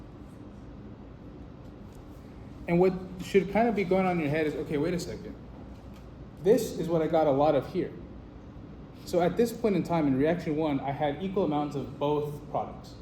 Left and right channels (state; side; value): identical; both; correlation 1.00